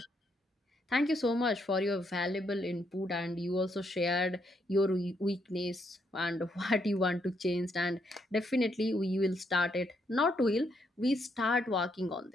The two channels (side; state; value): both; normal; correlation 0.76